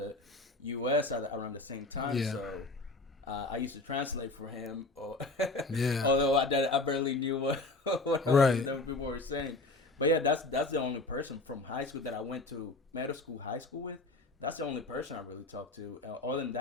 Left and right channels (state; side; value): quieter; right; 3.1 dB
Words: U.S. around the same time, Yeah. so I used to translate for him. Yeah. Although I barely knew what Right. people were saying. But yeah, that's the only person from high school that I went to middle school, high school with. That's the only person I really talked to. Other than